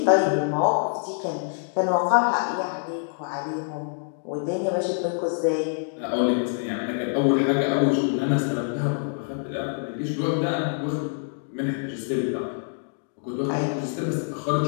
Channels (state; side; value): silent; right; digital silence